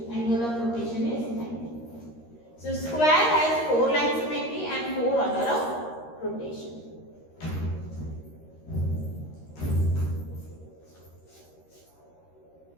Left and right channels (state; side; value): late; right; 13 ms